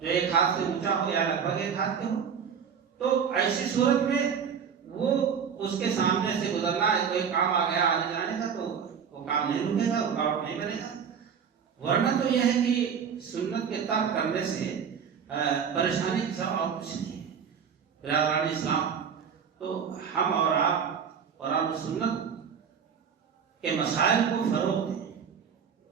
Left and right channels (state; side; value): quieter; left; 7.2 dB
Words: ایک ہاتھ سے اونچا ہو یا لگ بھگ ایک ہاتھ کے ہو، تو ایسی صورت میں وہ اس کے سامنے سے گزرنا ہے، کوئی کام آ گیا آنے جانے کا تو وہ کام نہیں رکے گا، رکاوٹ نہیں بنے گا۔ ورنہ تو یہ ہے کہ سنت کے ترک کرنے سے پریشانی کی سب اور کچھ نہیں ہے۔ برادران اسلام، تو ہم اور آپ قرآن و سنت کے مسائل کو فروغ دیں،